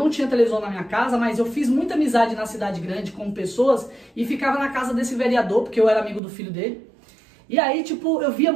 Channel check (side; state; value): left; drops out; at 6.2 s